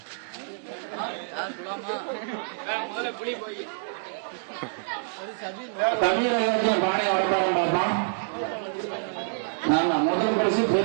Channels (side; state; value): left; silent; digital silence